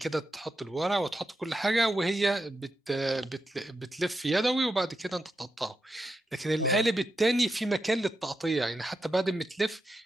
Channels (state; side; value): normal; both; correlation 0.86